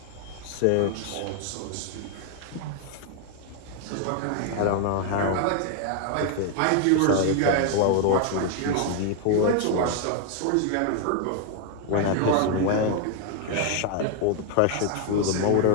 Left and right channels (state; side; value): different; both; correlation 0.00